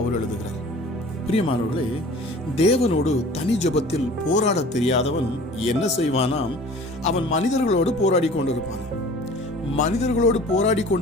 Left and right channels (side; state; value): both; normal; correlation 0.45